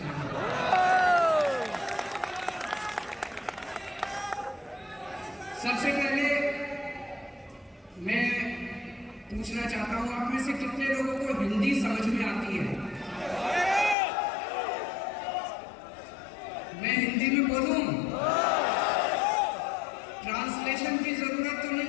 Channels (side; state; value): right; drops out; at 14.0 s